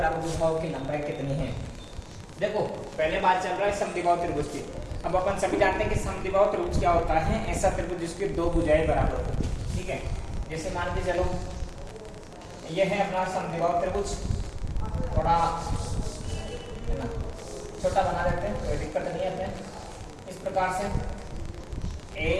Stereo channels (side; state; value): both; identical; correlation 1.00